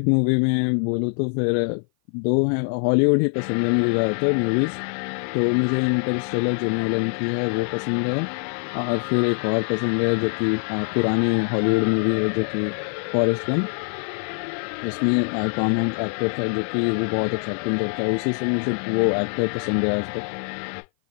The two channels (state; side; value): silent; right; 56 dB below the other